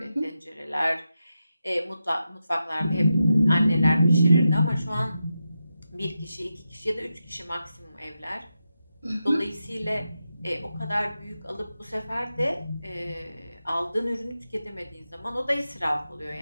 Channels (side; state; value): both; inverted; correlation -0.89